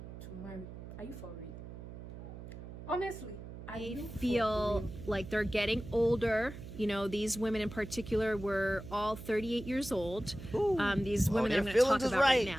to marry. Are you for real? Honestly, I feel like they're getting older. You know, these women in particular were all 38 years old. These women that I'm going to talk about right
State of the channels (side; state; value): right; noise; hum, 12 dB below the sound